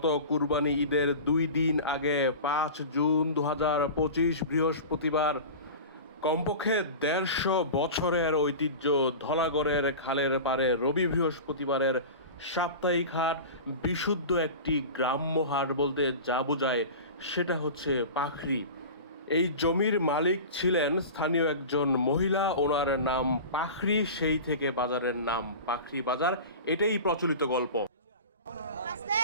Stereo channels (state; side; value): inverted; both; correlation -0.33